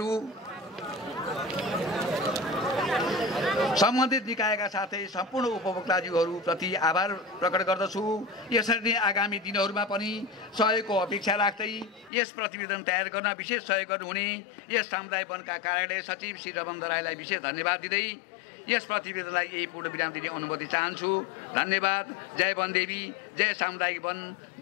सम्बन्धित निकायका साथै सम्पूर्ण उपभोक्ताजीहरूप्रति आभार प्रकट गर्दछु। यसरी नै आगामी दिनहरूमा पनि सहयोगको अपेक्षा राख्दै यस प्रतिवेदन तयार गर्न विशेष सहयोग गर्नुहुने यस सामुदायिक वनका कार्यालय सचिव श्री रमन दराईलाई विशेष धन्यवाद दिँदै यस प्रतिवेदनलाई यही पूर्ण विराम दिने अनुमति चाहन्छु। धन्यवाद। जय वनदेवी, जय सामुदायिक वन,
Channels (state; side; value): drops out; right; at 12.1 s